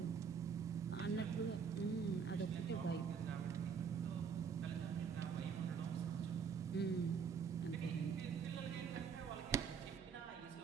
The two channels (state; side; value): quieter; left; 6.5 dB